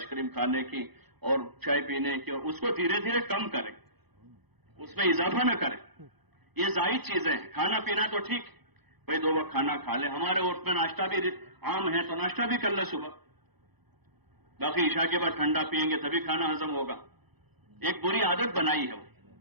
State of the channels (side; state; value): left; late; 0.99 ms